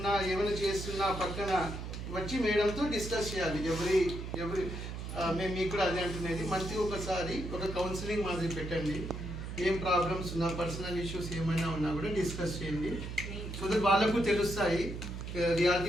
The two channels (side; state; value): right; noise; hum, 7 dB below the sound